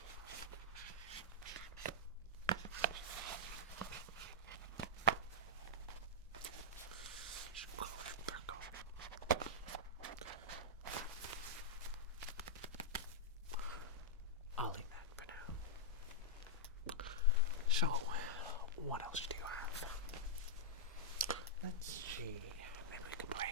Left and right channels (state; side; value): normal; both; correlation -0.09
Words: I'll leave that for now. So, what else do you have? Let's see. Maybe we can play